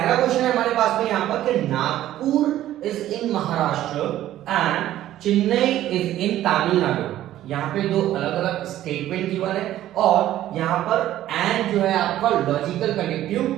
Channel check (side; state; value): left; quieter; 13.3 dB